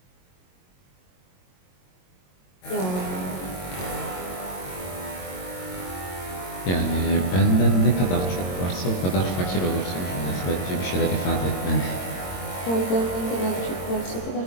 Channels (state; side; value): late; right; 22 ms